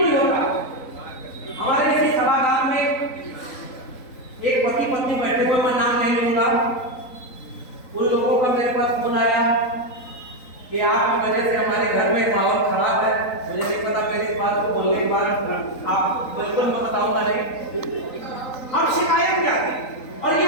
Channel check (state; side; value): late; right; 3.9 ms